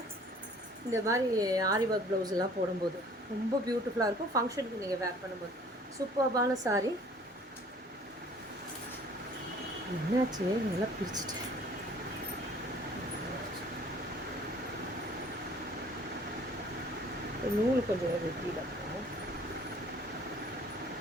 இந்த மாதிரி ஆரி ஒர்க் ப்ளவுஸ் எல்லாம் போடும்போது. ரொம்ப பியூட்டிஃபுல்லாக இருக்கும் ஃபங்க்ஷனுக்கு நீங்கள் வேர் பண்ணும்போது. சூப்பர்பான சாரீ. என்னாச்சு, நல்லா பிரிச்சுட்டேன். நூல் கொஞ்சம் வெட்டியில் இருக்கும்.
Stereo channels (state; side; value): normal; both; correlation 0.53